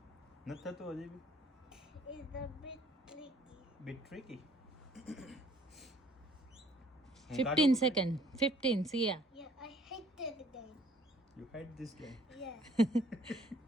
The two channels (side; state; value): both; normal; correlation 0.59